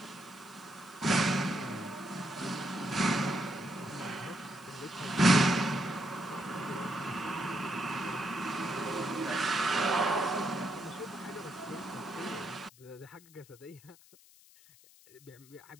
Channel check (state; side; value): noise; left; hiss, 24 dB below the sound